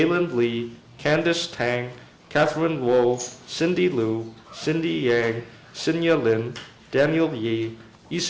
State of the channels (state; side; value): identical; both; correlation 1.00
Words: Lee, Candice Tang, Catherine Luo, Cindy Liu, Cindy Yang, Sinya Lin, Daniel Yi,